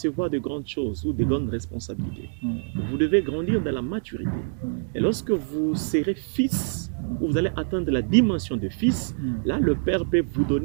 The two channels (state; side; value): silent; left; digital silence